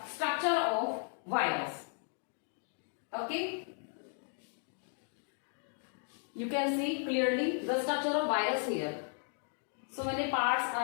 structure of virus. Okay. You can see clearly the structure of virus here. So many parts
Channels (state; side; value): silent; right; 54 dB below the other